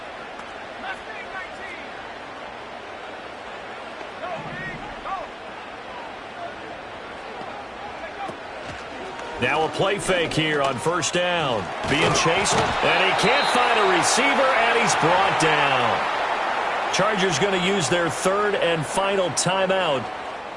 Now a play fake here on first down. Being chased, and he can't find a receiver, and he's brought down. Chargers going to use their 3rd and final timeout.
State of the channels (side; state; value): both; identical; correlation 1.00